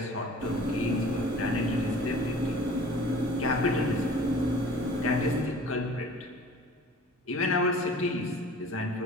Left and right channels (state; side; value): normal; both; correlation 0.46